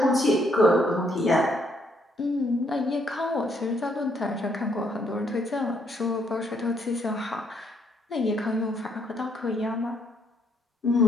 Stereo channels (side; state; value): both; normal; correlation 0.71